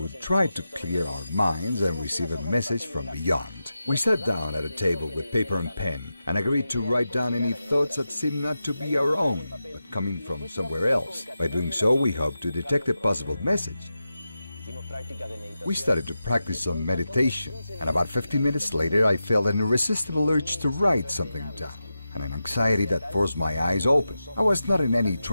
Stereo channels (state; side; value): inverted; both; correlation -0.91